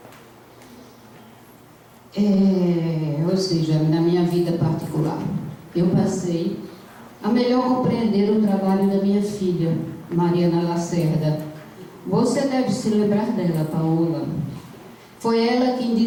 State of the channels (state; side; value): identical; both; correlation 1.00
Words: Ou seja, na minha vida particular, eu passei a melhor compreender o trabalho da minha filha, Mariana Lacerda. Você deve se lembrar dela, Paola. Foi ela quem